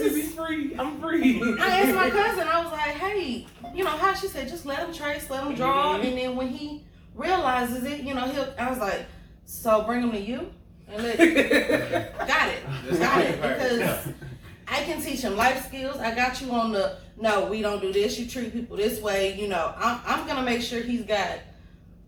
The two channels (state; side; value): identical; both; correlation 1.00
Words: is- be free. I'm free." I asked my cousin, I was like, hey, you know how she said, just let him trace, let him draw, Mhm. and then when he realizes it, you know, I was like, so bring him to you and got it, because I can teach him life skills. I got you on no, we don't do this. You treat people this way. You know, I'm gonna make sure he's got